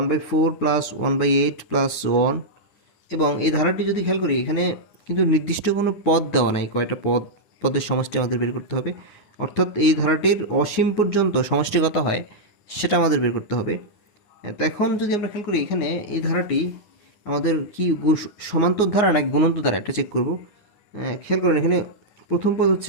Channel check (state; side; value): late; right; 9.9 ms